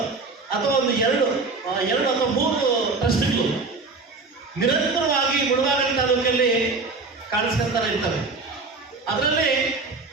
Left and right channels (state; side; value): quieter; left; 3.9 dB